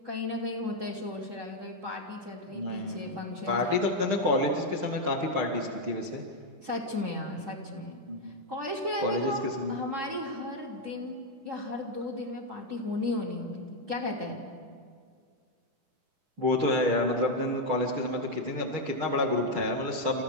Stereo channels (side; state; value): left; late; 10 ms